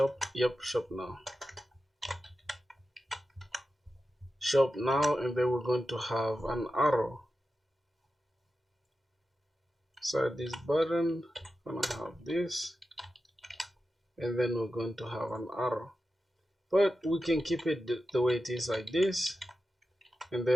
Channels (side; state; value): both; normal; correlation 0.92